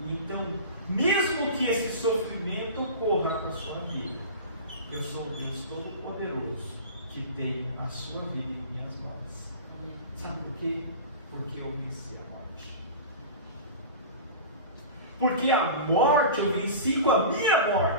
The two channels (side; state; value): both; inverted; correlation -0.33